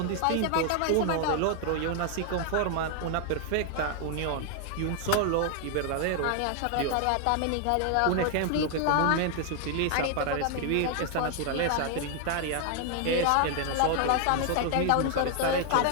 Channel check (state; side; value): different; both; correlation 0.00